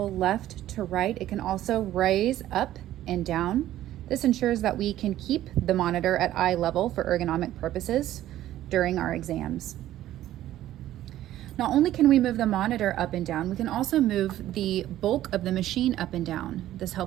left to right, it can also raise up and down. This ensures that we can keep the monitor at eye level for ergonomic purposes during our exams. Not only can we move the monitor up and down, we can also move the bulk of the machine up and down. This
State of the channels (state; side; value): quieter; left; 13.4 dB